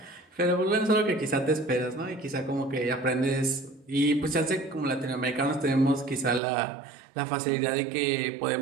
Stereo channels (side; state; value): left; drops out; at 6.4 s